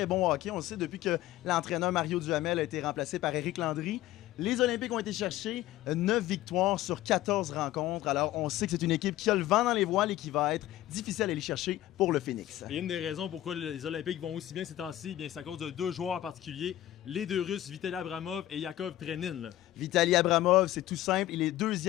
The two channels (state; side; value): quieter; right; 14.4 dB